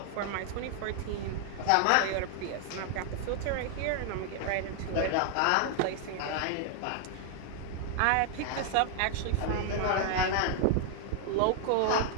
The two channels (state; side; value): different; both; correlation 0.00